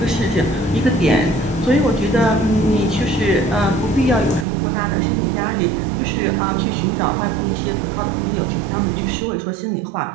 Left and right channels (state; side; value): drops out; left; at 4.5 s